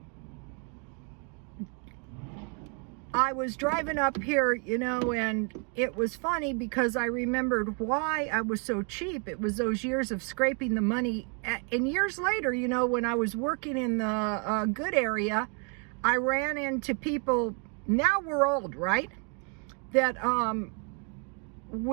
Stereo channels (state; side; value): quieter; left; 38.1 dB